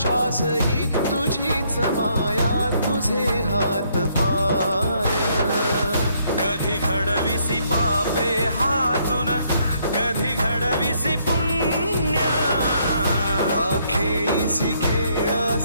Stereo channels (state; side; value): inverted; both; correlation -0.70